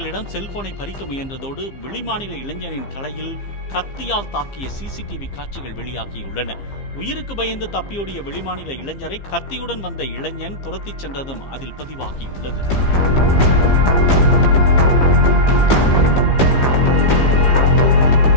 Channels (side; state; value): right; late; 15 ms